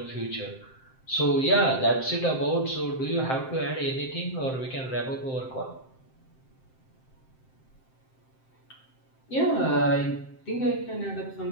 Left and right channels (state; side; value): late; right; 7.7 ms